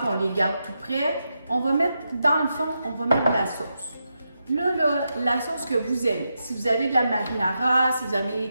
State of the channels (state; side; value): inverted; both; correlation -0.86